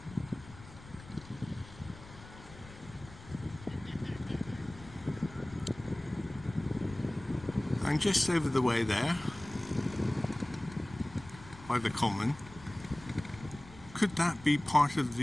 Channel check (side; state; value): left; noise; rumble, 18 dB below the sound